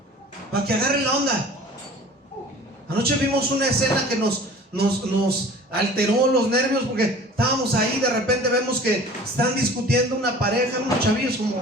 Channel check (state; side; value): normal; both; correlation 0.44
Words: para que agarre la onda. Anoche vimos una escena que nos alteró los nervios porque estábamos ahí. De repente vemos que están discutiendo una pareja, unos chavillos